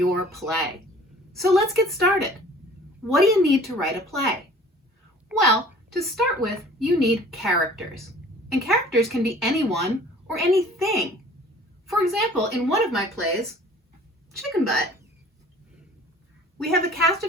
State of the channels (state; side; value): normal; both; correlation 0.50